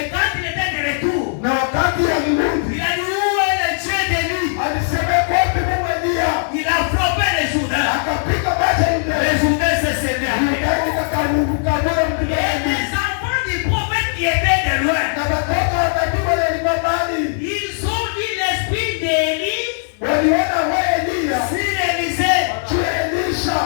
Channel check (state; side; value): silent; right; digital silence